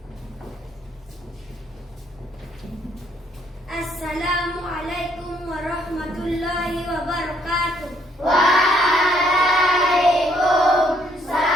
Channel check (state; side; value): normal; both; correlation 0.68